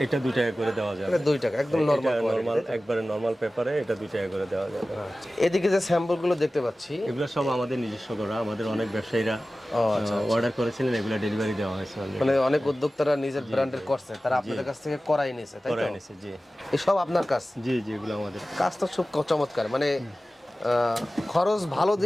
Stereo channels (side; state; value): both; normal; correlation 0.96